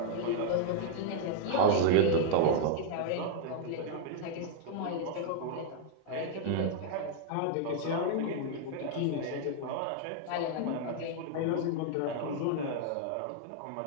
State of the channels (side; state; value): both; different; correlation -0.01